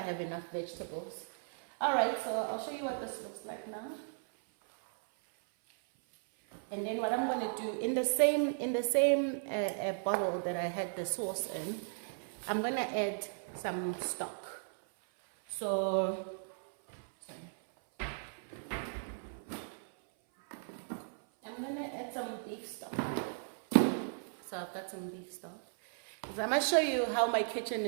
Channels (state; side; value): silent; left; 54 dB below the other